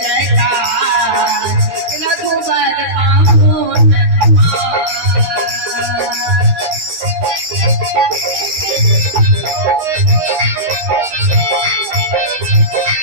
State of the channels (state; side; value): late; left; 13 ms